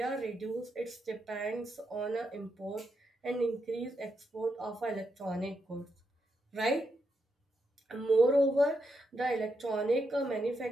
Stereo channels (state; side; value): normal; both; correlation 0.82